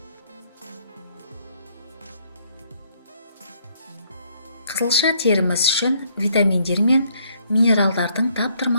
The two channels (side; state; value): both; inverted; correlation -0.67